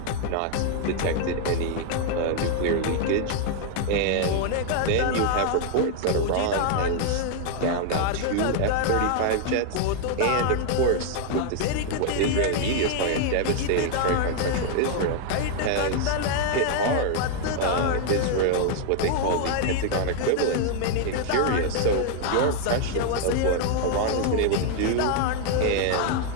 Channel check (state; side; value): different; both; correlation 0.00